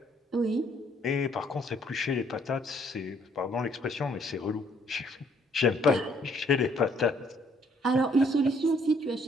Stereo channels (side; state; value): both; normal; correlation 0.65